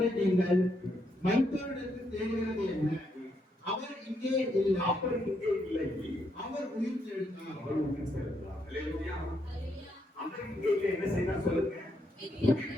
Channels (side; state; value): both; normal; correlation 0.77